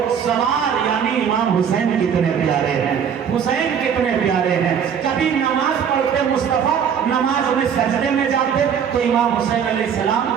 سوار یعنی امام حسین کتنے پیارے ہیں، حسین کتنے پیارے ہیں۔ کبھی نماز پڑھتے مصطفیٰ، نماز میں سجدے میں جاتے تو امام حسین علیہ السلام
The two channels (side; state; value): left; quieter; 7.7 dB